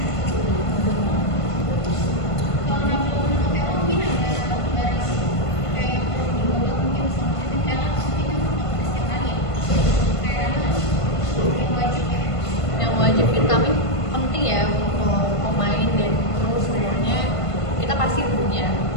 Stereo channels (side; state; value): right; late; 1.5 ms